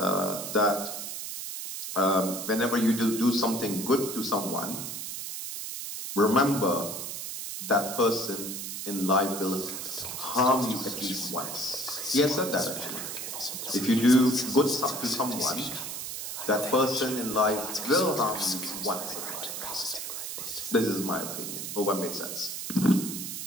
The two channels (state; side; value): noise; right; hiss, 6 dB below the sound